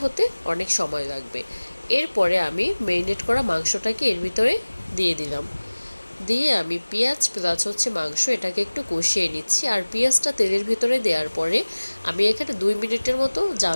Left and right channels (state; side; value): inverted; both; correlation -1.00